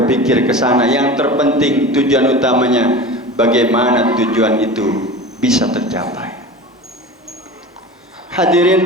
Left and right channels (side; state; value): both; normal; correlation 0.33